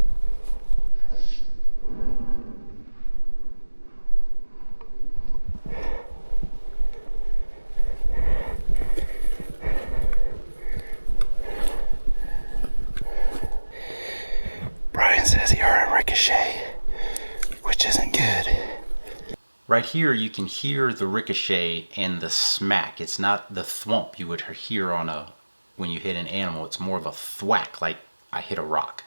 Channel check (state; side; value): inverted; both; correlation -1.00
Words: Brian says he heard a ricochet, which isn't good. Right here, you can hear the ricochet and the smack. It's not the thwomp you would hear on when you hit an animal. It's more of a thwack, like I hit a rock.